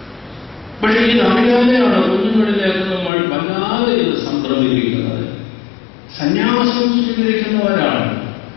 പക്ഷെ ഇതറിയാതെയാണ് കുഞ്ഞുങ്ങളിലേക്ക് നമ്മൾ വല്ലാതെ ഇത് സംക്രമിപ്പിക്കുന്നത്. സന്യാസം സ്വീകരിക്കുന്ന ഒരാൾ,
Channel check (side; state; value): right; drops out; at 3.1 s